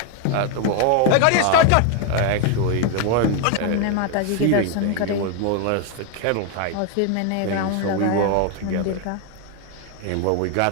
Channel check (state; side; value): different; both; correlation 0.01